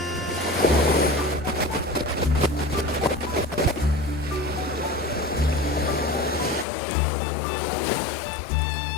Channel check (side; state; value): right; drops out; at 6.7 s